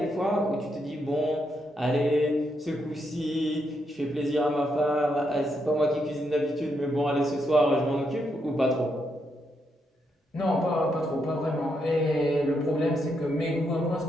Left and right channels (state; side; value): normal; both; correlation 0.79